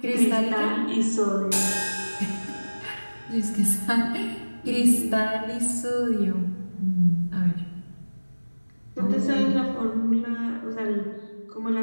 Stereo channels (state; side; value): inverted; both; correlation -1.00